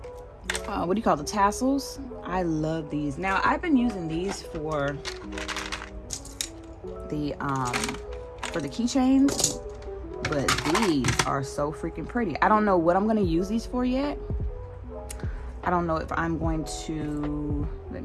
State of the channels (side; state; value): both; identical; correlation 1.00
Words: what do you call the tassels? I love these. Now I've been using these for the keychains, but these are so freaking pretty. I don't know what I'm gonna use these for yet. I don't know if I'm going to, let